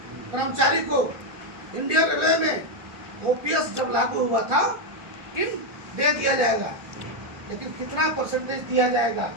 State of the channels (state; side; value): late; left; 1.4 ms